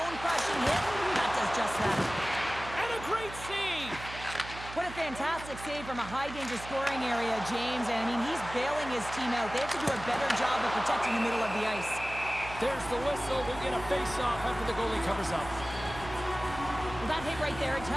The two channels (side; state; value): right; noise; hum, 13 dB below the sound